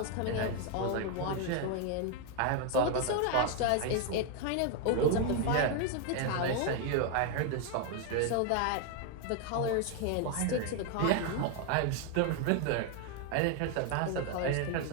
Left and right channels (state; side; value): different; both; correlation 0.00